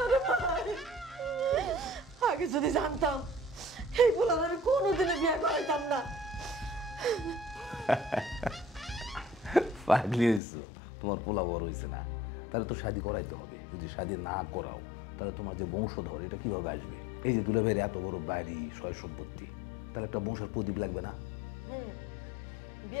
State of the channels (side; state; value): right; drops out; at 10.4 s